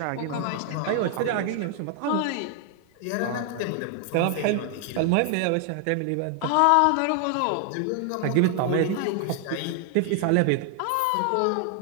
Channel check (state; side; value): different; both; correlation 0.00